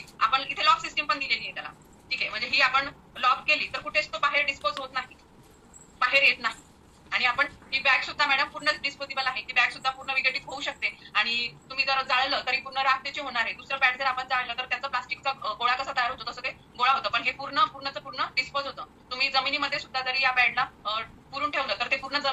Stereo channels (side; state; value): both; identical; correlation 1.00